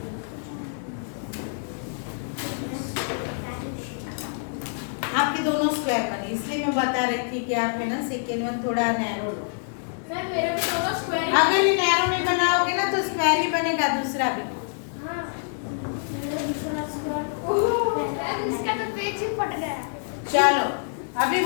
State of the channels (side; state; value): right; silent; digital silence